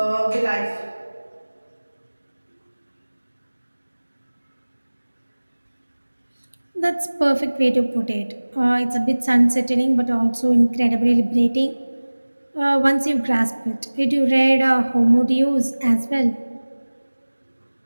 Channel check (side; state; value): both; inverted; correlation -1.00